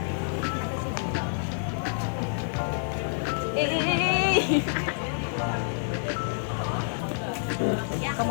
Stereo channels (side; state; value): right; silent; 56 dB below the other